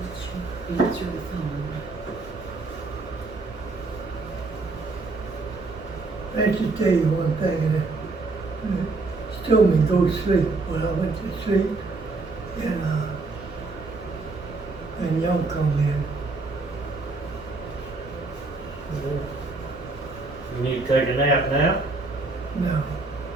Answer the phone. I just tell you one thing, and she told me go to sleep. Well, I went to sleep, and y'all come in. You need to take a nap now? No,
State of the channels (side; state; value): left; quieter; 3.5 dB